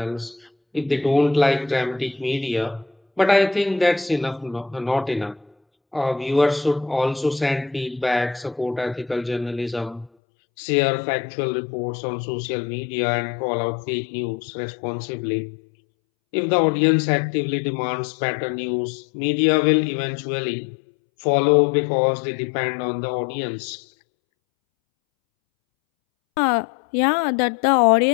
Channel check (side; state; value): right; drops out; at 10.1 s